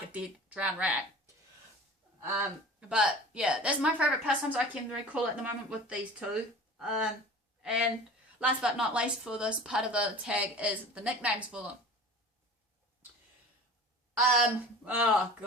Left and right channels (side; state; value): both; normal; correlation 0.39